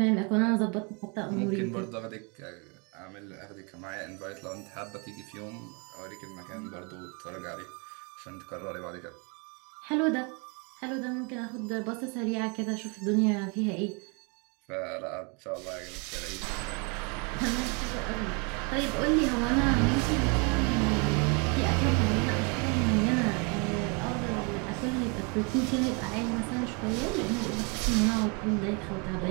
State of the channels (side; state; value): left; quieter; 33.5 dB